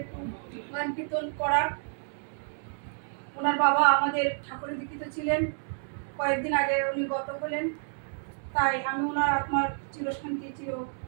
একটু গান কীর্তন করার। ওনার বাবা আমাদের ঠাকুরের দীক্ষিত ছিলেন, কয়েকদিন আগে উনি গত হলেন। তাই আমি ওনার আত্মার চিরশান্তি চির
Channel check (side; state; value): left; silent; 58 dB below the other